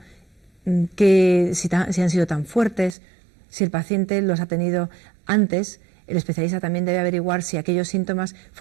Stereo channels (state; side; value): drops out; left; at 3.0 s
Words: Si han sido tan fuertes, si el paciente los ha tenido antes. El especialista también debe averiguar si aquellos síntomas